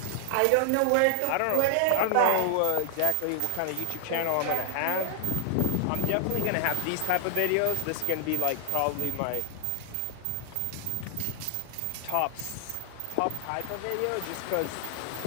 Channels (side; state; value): both; different; correlation 0.00